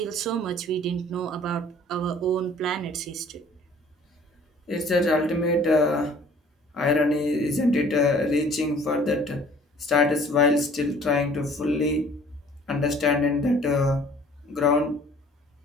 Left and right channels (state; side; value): normal; both; correlation 0.53